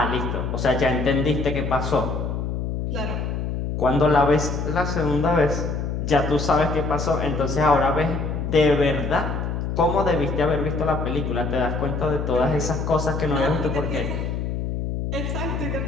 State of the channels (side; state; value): left; noise; hum, 2 dB below the sound